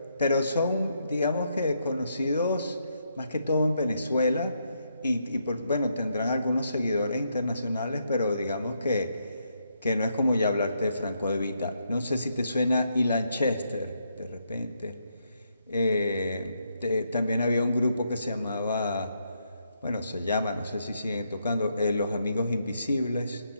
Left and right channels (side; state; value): both; inverted; correlation -0.78